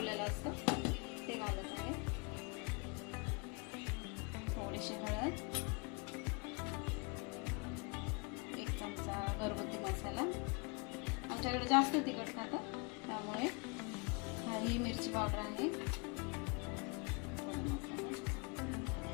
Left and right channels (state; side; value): quieter; right; 31.6 dB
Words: असतं ते घालत आहे. थोडीशी हळद, 1 चमचा घरगुती मसाला. आमच्याकडे जास्त तिखट खातात, त्यामुळे ही मिरची पावडर आहे.